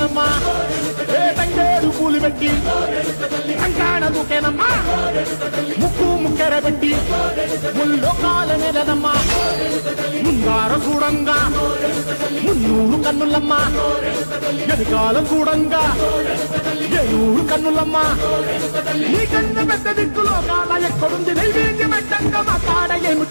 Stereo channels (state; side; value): inverted; both; correlation -1.00